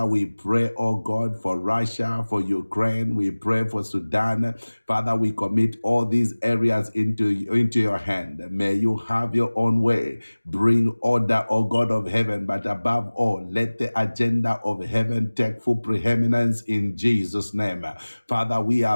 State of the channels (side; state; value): both; inverted; correlation -1.00